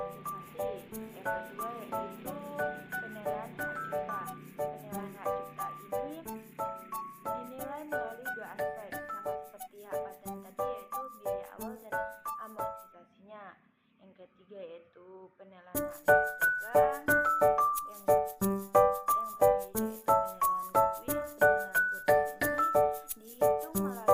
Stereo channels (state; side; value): identical; both; correlation 1.00